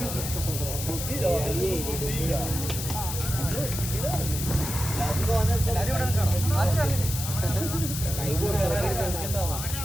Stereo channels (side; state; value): left; noise; hiss, 5 dB below the sound